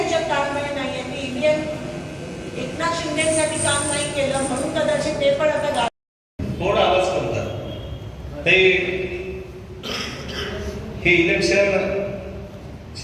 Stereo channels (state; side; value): identical; both; correlation 1.00